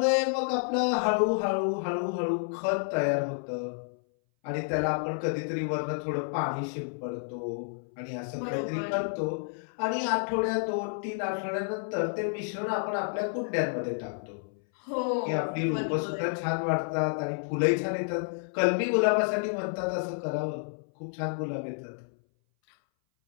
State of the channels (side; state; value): right; silent; 58 dB below the other